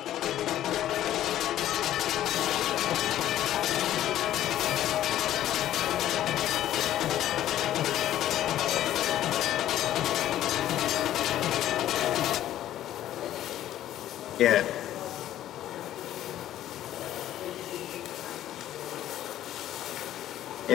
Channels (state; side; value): quieter; right; 12.6 dB